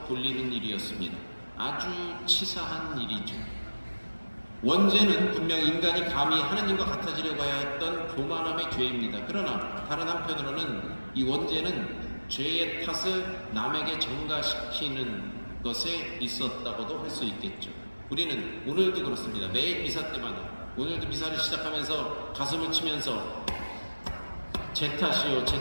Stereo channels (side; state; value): both; inverted; correlation -1.00